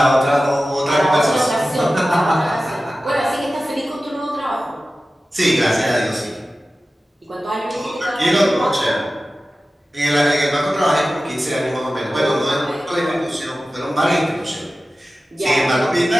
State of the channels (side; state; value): both; normal; correlation 0.95